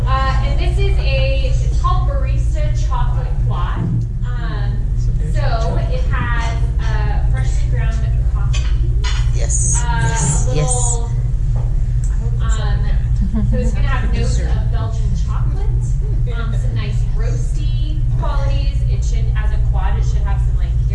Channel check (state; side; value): identical; both; correlation 1.00